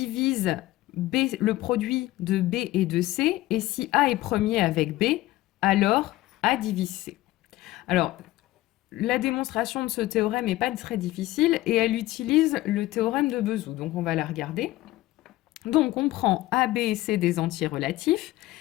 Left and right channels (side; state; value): right; quieter; 17.0 dB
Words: B, le produit de B et de C, et si A est premier avec B, alors A divise C. Alors, la démonstration de ce théorème n'est pas très difficile et elle utilise le théorème de Bezout. Donc, on va la regarder. Donc, on prend A, B et C des entiers relatifs